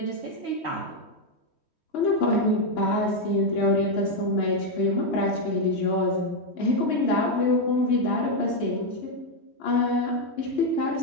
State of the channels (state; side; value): late; right; 3.1 ms